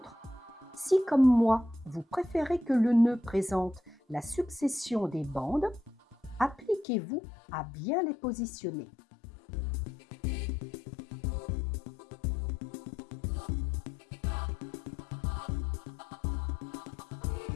si comme moi, vous préférez que le nœud présente la succession des bandes, appliquez-vous à bien les positionner.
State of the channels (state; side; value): drops out; right; at 6.9 s